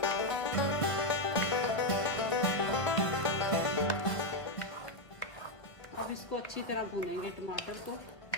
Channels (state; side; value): late; right; 1.5 ms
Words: इसको अच्छी तरह भूनेंगे टमाटर को।